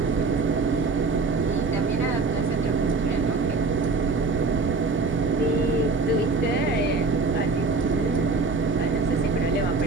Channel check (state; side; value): quieter; left; 4.0 dB